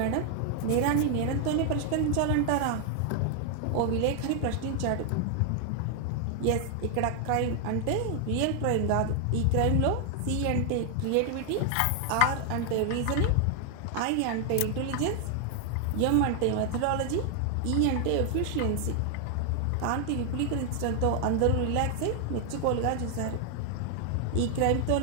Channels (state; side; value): different; both; correlation 0.00